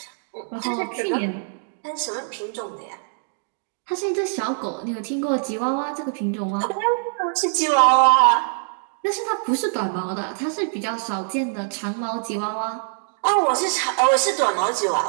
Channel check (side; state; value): left; silent; digital silence